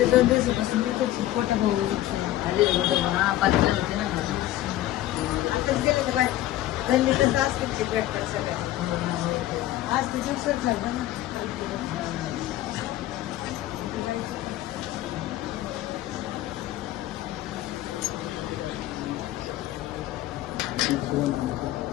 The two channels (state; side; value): quieter; right; 14.6 dB